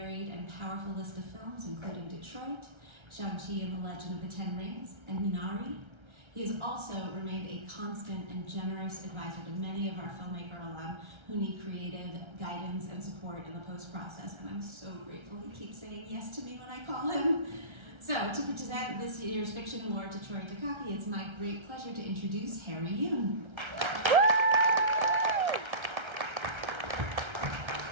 and powerful list of films, including Detroit, Shang-Chi and the Legend of the Ten Rings, and Minari. He has also remained a constant and generous advisor to many of our filmmaker alum who need creative guidance and support in the post-process, and I'm so grateful he keeps saying yes to me when I call him. So, to present this year's Fiction Award to Troy Takaki, it's my great pleasure to introduce Harry Yoon.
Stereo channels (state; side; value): late; left; 1.3 ms